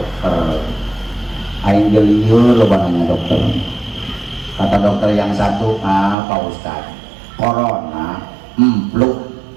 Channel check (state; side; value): drops out; left; at 6.2 s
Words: Aing geliur lo nanya dokter. Kata dokter yang satu, Pak Ustadz, corona, flu,